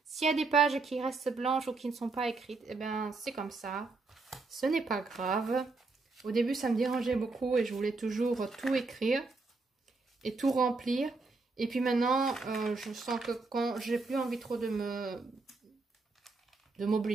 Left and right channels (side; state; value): left; quieter; 3.8 dB